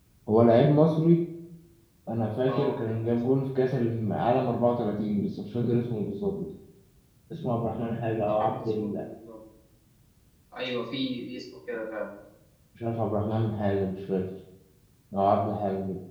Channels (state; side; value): identical; both; correlation 1.00